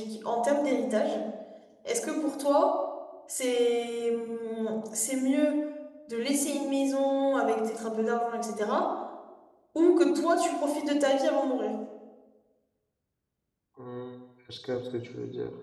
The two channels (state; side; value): identical; both; correlation 1.00